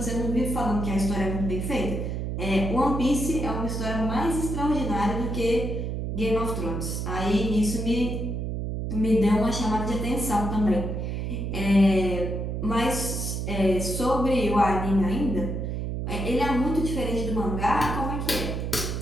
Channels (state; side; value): noise; right; hum, 3 dB below the sound